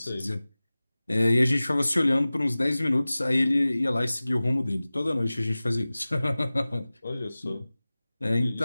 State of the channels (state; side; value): inverted; both; correlation -0.98